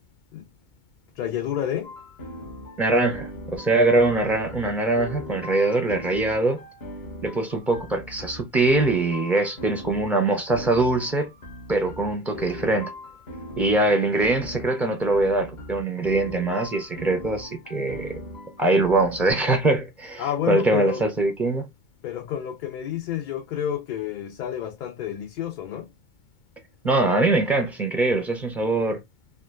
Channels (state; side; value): late; right; 2.2 ms